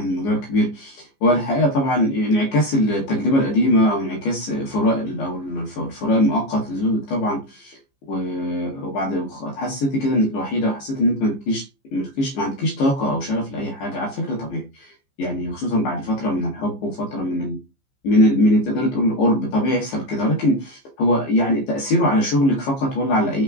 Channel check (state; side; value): late; right; 15 ms